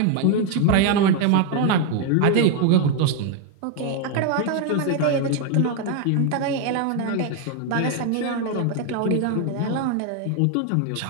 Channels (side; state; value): both; different; correlation 0.01